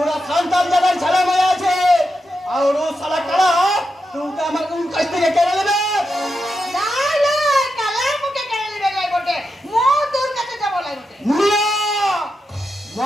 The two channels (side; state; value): both; normal; correlation 0.87